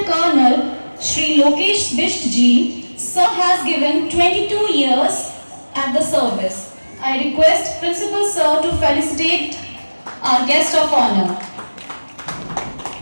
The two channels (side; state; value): both; inverted; correlation -1.00